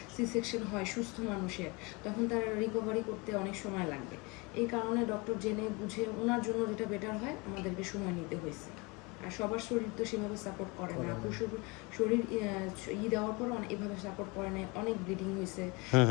সি সেকশন হয় সুস্থ মানুষের, তখন তার রিকভারি করতে অনেক সময় লাগবে। এই কারণে ডক্টর জেনে বুঝে ওনার জন্য যেটা বেটার হয় আমাদেরকে সময় নিতে হয়েছে। আর সবার শরীর তো সেভাবে সাপোর্ট করে না, আপুর শরীর দেওয়ার পর এভাবে সাপোর্ট করে না, অনেক ব্লিডিং হয়েছে,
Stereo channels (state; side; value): quieter; right; 27.2 dB